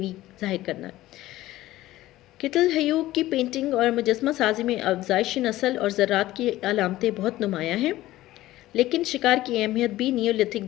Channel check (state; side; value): quieter; right; 16.0 dB